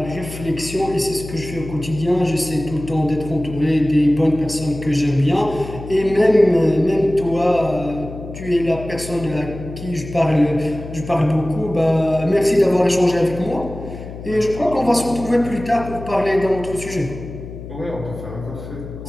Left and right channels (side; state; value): left; noise; hum, 12 dB below the sound